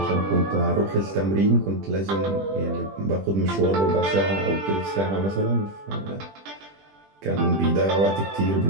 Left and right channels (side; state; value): left; late; 20 ms